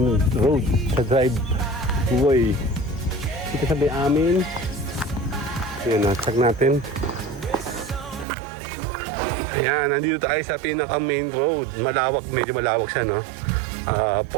road, sa driveway. Dito sa may amin. Yun, check natin. Ayan, nandito tayo sa pinaka main road. Malawak, medyo malawak siya, no? 4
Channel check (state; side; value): drops out; left; at 8.2 s